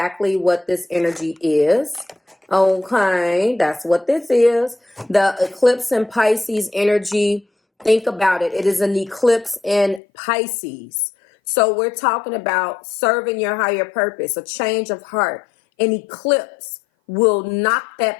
what this energy is. Okay, that's what this is. The eclipse in Pisces energy. Think about it. It is an eclipse in Pisces. So we're talking about serving your higher purpose, a change of heart. An eclipse will knock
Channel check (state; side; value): drops out; right; at 10.0 s